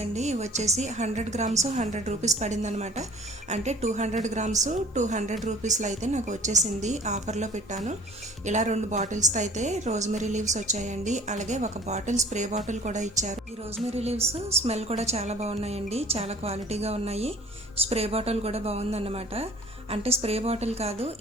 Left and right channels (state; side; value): normal; both; correlation 0.49